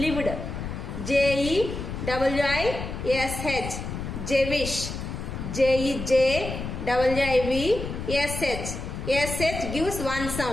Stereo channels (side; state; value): left; noise; rumble, 6 dB below the sound